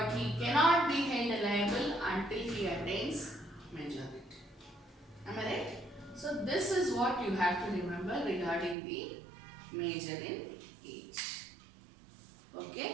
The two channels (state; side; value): drops out; left; at 8.8 s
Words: he cannot be held liable until he attains majority. Am I right? So this is what you have to remember regarding the major in age.